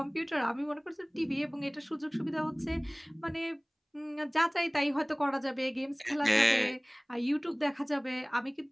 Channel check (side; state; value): both; identical; correlation 1.00